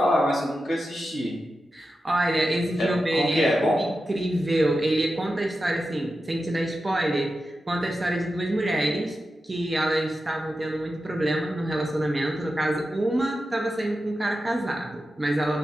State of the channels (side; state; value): both; normal; correlation 0.91